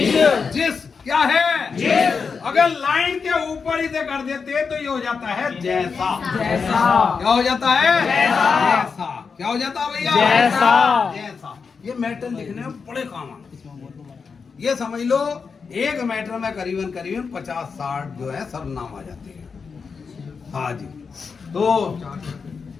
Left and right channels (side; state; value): right; quieter; 5.4 dB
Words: जिस। क्या है? जिस। अगर लाइन के ऊपर इसे कर देते तो ये हो जाता है जैसा। जैसा। क्या हो जाता है? जैसा। क्या हो जाता है भैया? जैसा। जैसा। ये मैटर लिखने में बड़े काम आते। ये समझ लो, एक मैटर में करीबन 50-60 जो है सर्वनाम आ जाते हैं। हाँ जी। तो